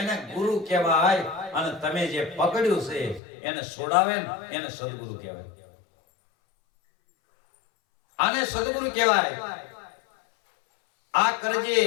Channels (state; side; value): drops out; right; at 3.2 s